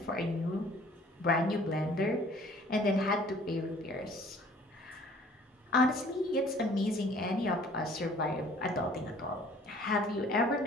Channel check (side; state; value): both; normal; correlation 0.53